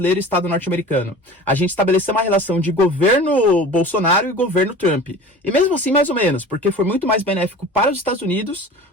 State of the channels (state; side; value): normal; both; correlation 0.39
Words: e Estado norte-americano. A gente estabeleceu uma relação de governo Bolsonaro e governo Trump. E mesmo assim, mais ou menos, porque foi muito mais benéfico para os Estados Unidos